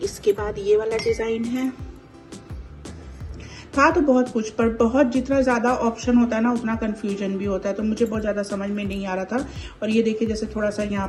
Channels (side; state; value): both; identical; correlation 1.00